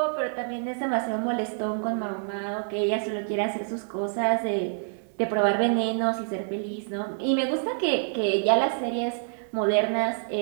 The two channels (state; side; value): silent; left; digital silence